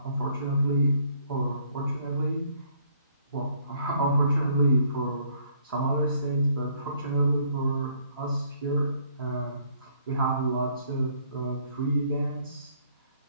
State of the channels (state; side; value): inverted; both; correlation -0.64